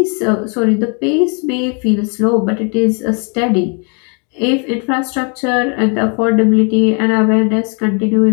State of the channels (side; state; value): right; quieter; 37.3 dB